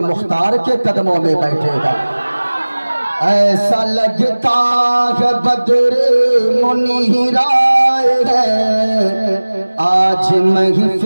مختار کے قدموں میں بیٹھے گا۔ ایسا لگتا ہے بدر منیرائے ہے، آج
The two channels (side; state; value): both; inverted; correlation -1.00